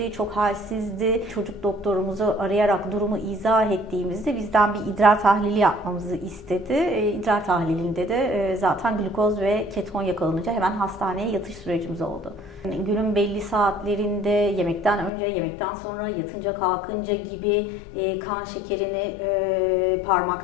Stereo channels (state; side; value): drops out; right; at 15.1 s